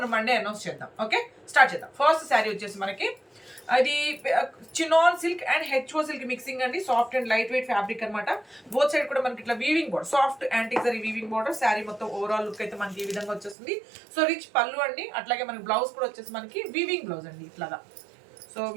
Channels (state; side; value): drops out; left; at 13.6 s